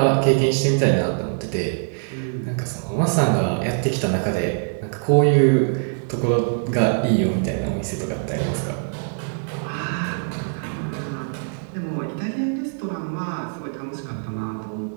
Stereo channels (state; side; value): silent; left; 63 dB below the other